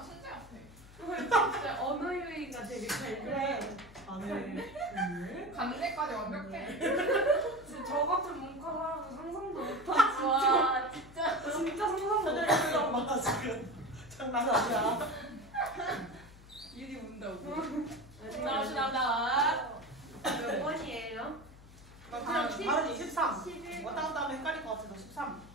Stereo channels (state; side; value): noise; left; hum, 20 dB below the sound